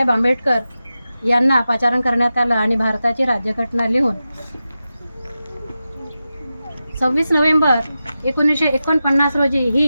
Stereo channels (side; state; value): both; inverted; correlation -0.92